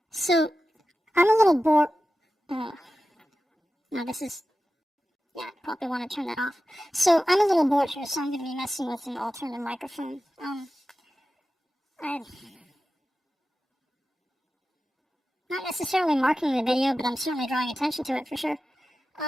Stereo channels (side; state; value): both; normal; correlation 0.93